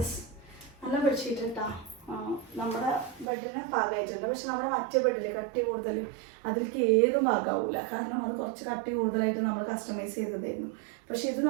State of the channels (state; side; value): drops out; left; at 3.2 s